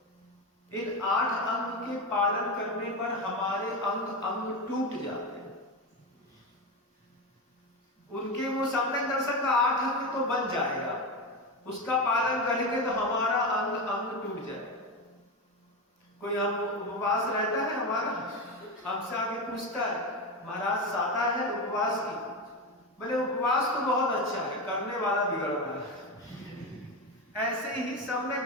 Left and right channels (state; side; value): normal; both; correlation 0.17